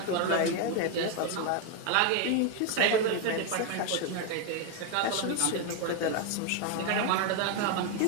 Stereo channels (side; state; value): both; different; correlation 0.01